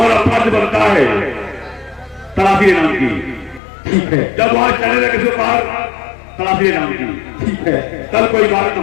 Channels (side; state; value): right; drops out; at 3.6 s